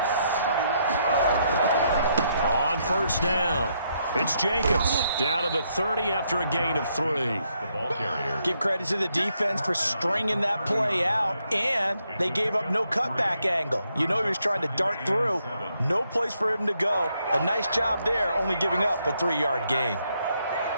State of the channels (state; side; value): inverted; both; correlation -0.76